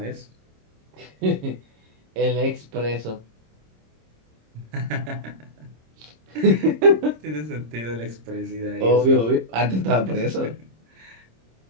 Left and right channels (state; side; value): late; left; 26 ms